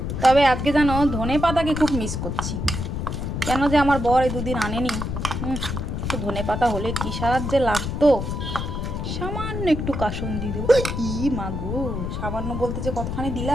তবে আজকে জানো ধনে পাতাকে খুব মিস করছি, কেন যে আমার বর এই দুদিন আনেনি। একটু ধনে পাতা হলে কি সাহায্যে লাগতো। সামান্য একটু কাসুন দিয়ে দেবো। ই মাগো, সামান্য বলতে যে কতখানি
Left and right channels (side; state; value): left; noise; rumble, 3 dB below the sound